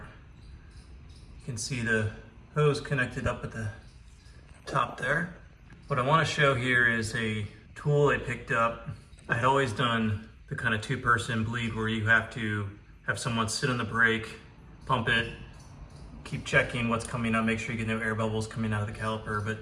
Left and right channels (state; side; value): identical; both; correlation 1.00